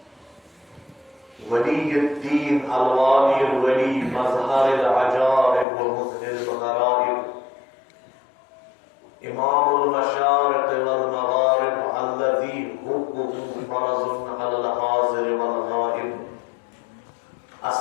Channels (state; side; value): drops out; right; at 5.7 s